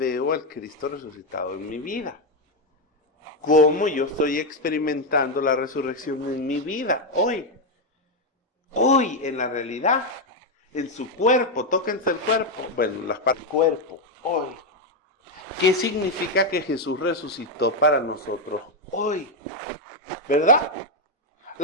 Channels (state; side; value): normal; both; correlation 0.04